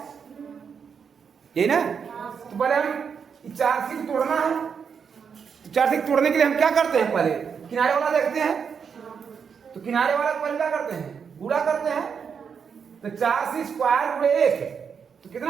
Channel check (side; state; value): left; quieter; 6.6 dB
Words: ये ना। तो पहले हम 4c को तोड़ना है, तो 4c को तोड़ने के लिए हम क्या करते हैं? पहले किनारे वाला देखते हैं, तो किनारे वाला पहले क्या करते हैं? गुणा करते हैं, तो 4c स्क्वायर गुणे 1 तो